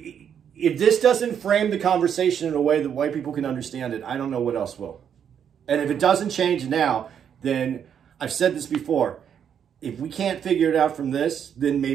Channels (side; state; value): left; quieter; 8.3 dB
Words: If this doesn't frame the conversation in a way that white people can understand it, I don't know what else will. And if it doesn't change now, then I've said this before. If we can't figure it out from this, then